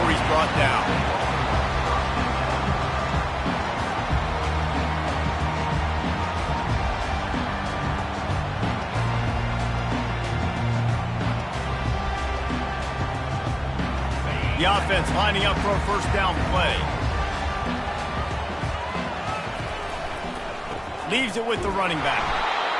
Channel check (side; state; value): both; identical; correlation 1.00